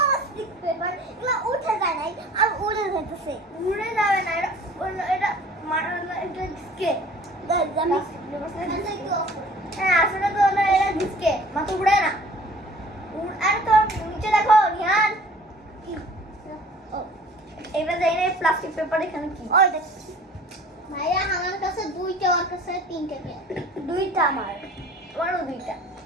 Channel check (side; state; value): both; normal; correlation 0.48